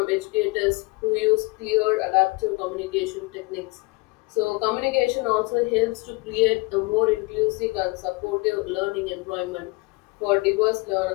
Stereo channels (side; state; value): right; quieter; 25.6 dB